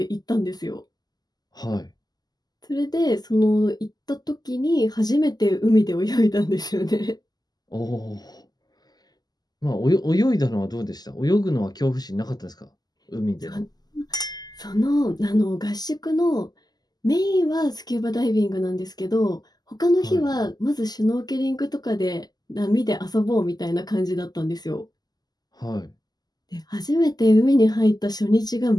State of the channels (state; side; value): late; right; 0.20 ms